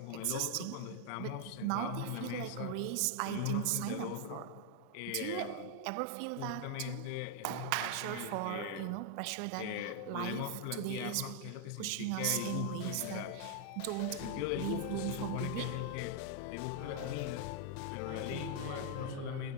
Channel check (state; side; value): different; both; correlation 0.00